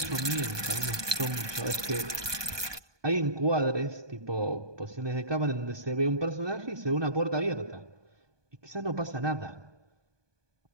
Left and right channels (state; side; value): late; left; 1.2 ms